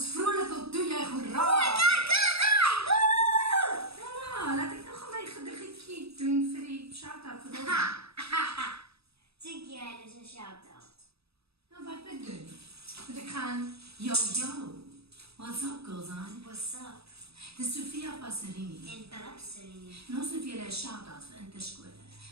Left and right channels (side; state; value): left; late; 0.78 ms